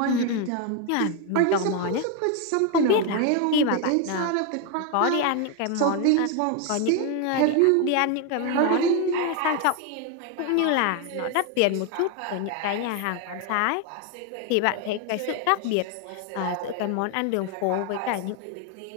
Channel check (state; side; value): different; both; correlation 0.01